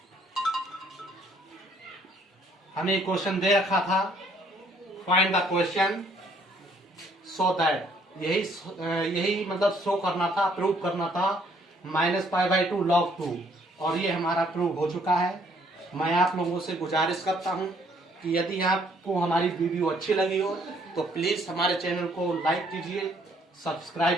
हमें क्वेश्चन दे रखा था find the question so that, यही मतलब शो करना था, प्रूव करना था माइनस π/2 log 2, और ये हमारा प्रूव हो चुका है। मैं आप लोगों से गुजारिश करता हूं कि यदि आपको हमारी वीडियो अच्छी लगी हो तो प्लीज हमारे चैनल को लाइक कीजिए,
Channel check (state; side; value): normal; both; correlation 0.65